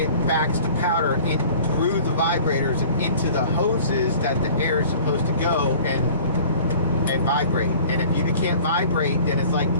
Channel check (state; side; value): inverted; both; correlation -0.46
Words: backs the powder in through the vibrators and into the hoses that the air is supposed to go and vibrate. And if you can't vibrate, then it's like